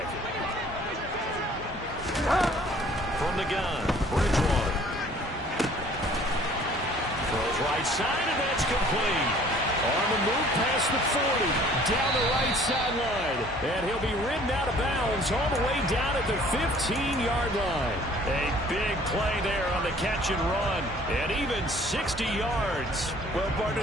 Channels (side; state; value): both; normal; correlation 0.54